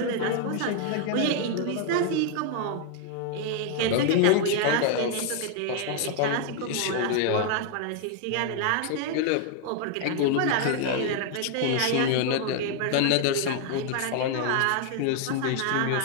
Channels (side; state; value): both; different; correlation 0.00